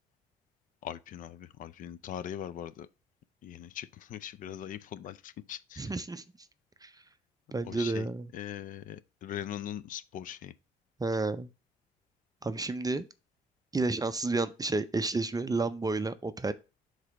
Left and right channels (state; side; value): normal; both; correlation 0.67